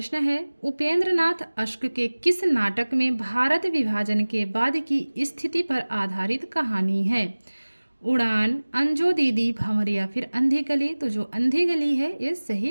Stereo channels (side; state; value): both; inverted; correlation -1.00